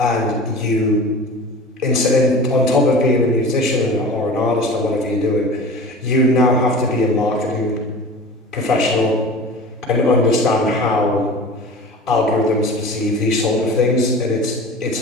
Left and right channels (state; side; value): normal; both; correlation 0.37